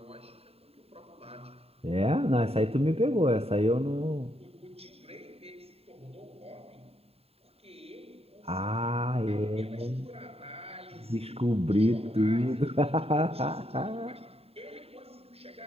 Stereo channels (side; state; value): left; late; 0.29 ms